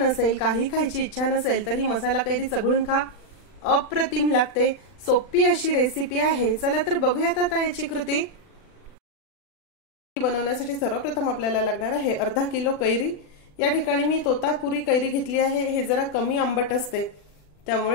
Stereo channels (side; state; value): right; late; 39 ms